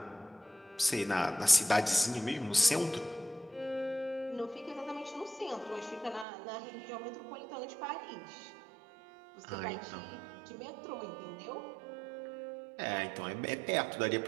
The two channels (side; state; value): left; drops out; at 6.2 s